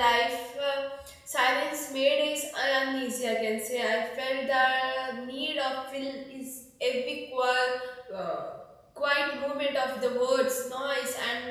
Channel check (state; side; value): identical; both; correlation 1.00